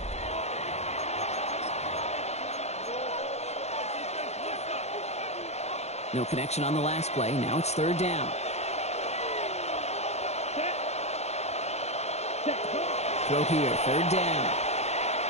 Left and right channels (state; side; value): late; right; 0.31 ms